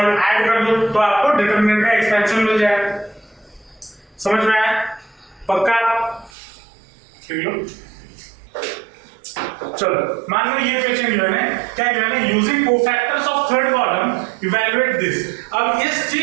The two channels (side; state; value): left; drops out; at 6.3 s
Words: ऐड कर दो, तो आपको डिटरमिनेंट का एक्सपेंशन मिल जाएगा। समझ में आया? पक्का? चलो, मान लो ये क्वेश्चन गिवन है, क्या गिवन है? Using cofactors of third column evaluate this. अब इस